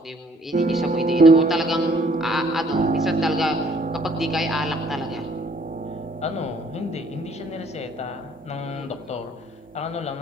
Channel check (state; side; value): normal; both; correlation 0.61